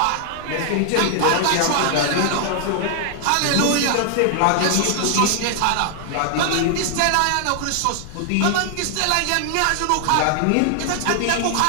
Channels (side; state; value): both; different; correlation 0.00